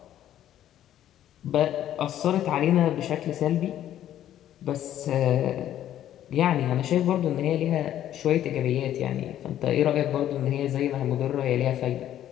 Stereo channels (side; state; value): right; quieter; 11.6 dB